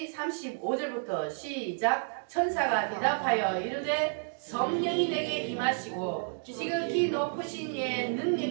35절부터 시작. 천사가 대답하여 이르되 성령이 내게 임하시고 지극히 높으신 이의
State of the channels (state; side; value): silent; left; digital silence